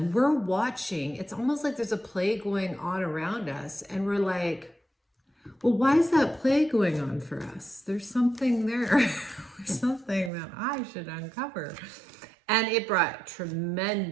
We're watching. It's almost like there's a play going on around us. And we're like, well, why is that play going on for us? There's something there. There's something that I should uncover. And it brought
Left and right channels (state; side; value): drops out; left; at 10.3 s